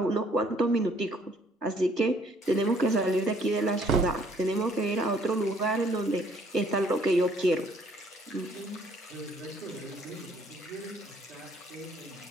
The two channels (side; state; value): both; normal; correlation 0.62